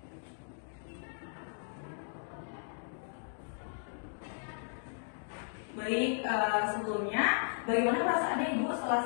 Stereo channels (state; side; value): silent; right; digital silence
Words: Baik, sebelumnya bagaimana perasaan Ibu setelah